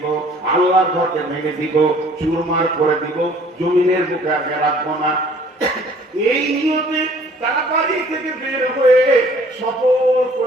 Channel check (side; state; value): both; normal; correlation 0.55